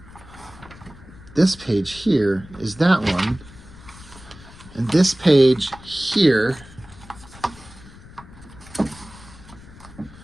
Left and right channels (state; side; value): noise; left; rumble, 20 dB below the sound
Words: this page here is that one, and this page here